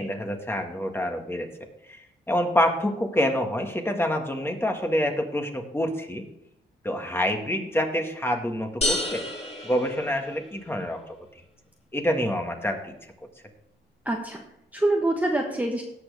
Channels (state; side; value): normal; both; correlation 0.73